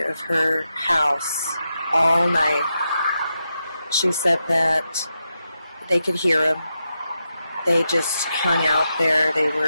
of her house all night. She said that they could hear them. They just hung out there. It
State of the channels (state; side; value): inverted; both; correlation -0.87